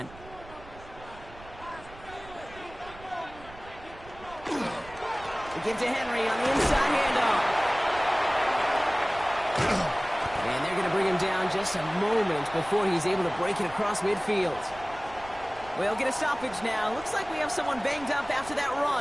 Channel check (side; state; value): right; noise; rumble, 19 dB below the sound